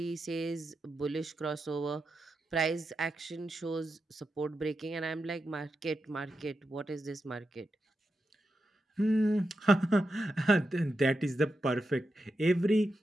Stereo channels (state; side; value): normal; both; correlation 0.88